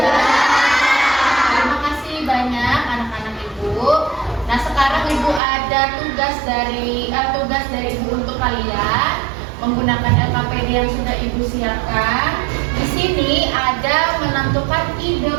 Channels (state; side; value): drops out; left; at 5.4 s